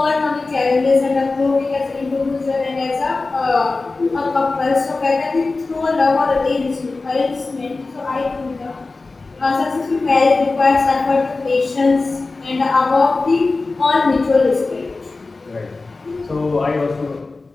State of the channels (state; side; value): quieter; right; 3.6 dB